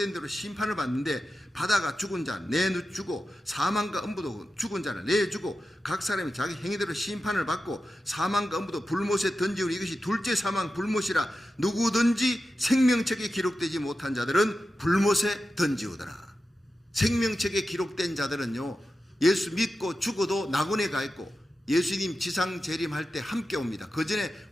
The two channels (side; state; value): both; normal; correlation 0.92